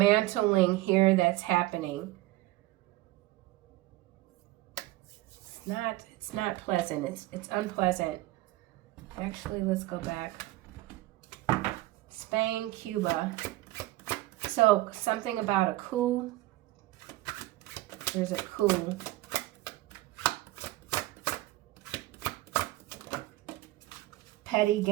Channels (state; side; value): quieter; left; 18.1 dB